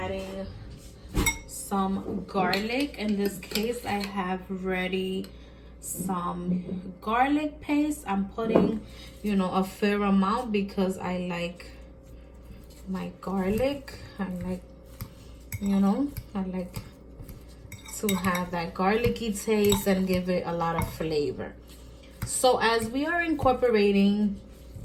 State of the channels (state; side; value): identical; both; correlation 1.00